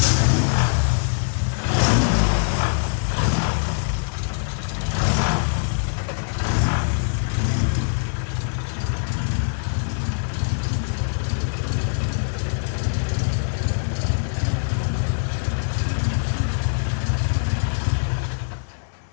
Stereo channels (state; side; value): silent; right; digital silence